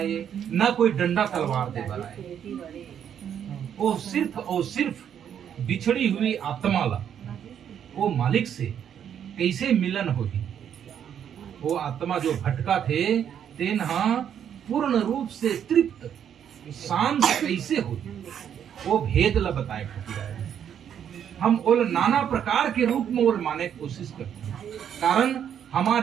न कोई डंडा तलवार दे बर आए। वो सिर्फ और सिर्फ बिछड़ी हुई आत्मा ला वो मालिक से कैसे मिलन होगी। वो आत्मा जो भटका थे तेन पूर्ण रूप से तृप्त शांत कैसे होगी, वो भेद ला बताए खातिर हम ओल नाना प्रकार के रूप में ओल माने की कोशिश करते हैं। कारण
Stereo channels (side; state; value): left; quieter; 9.0 dB